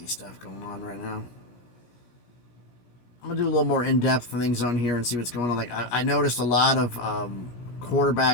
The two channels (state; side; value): late; right; 17 ms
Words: stuff going on right now. I'm gonna do a little more in-depth things on here and see what's going on. Like I noticed a lot of